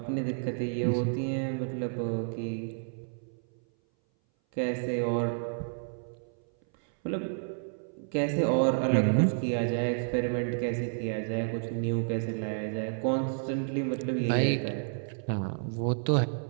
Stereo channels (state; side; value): silent; left; 58 dB below the other